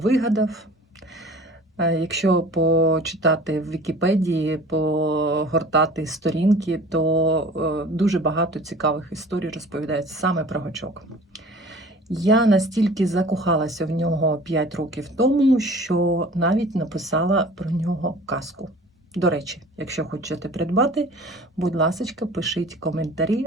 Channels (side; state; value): both; normal; correlation 0.45